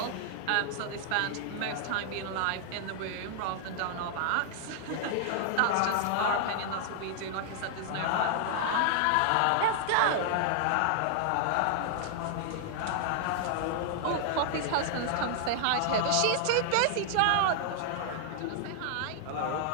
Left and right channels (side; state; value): both; different; correlation 0.00